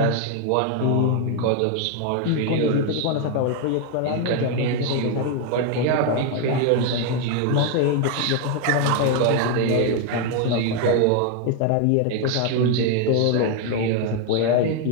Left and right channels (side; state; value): both; different; correlation 0.01